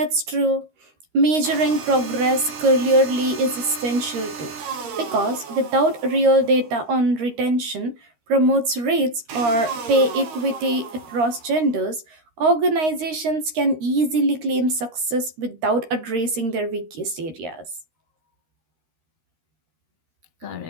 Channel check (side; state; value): left; late; 13 ms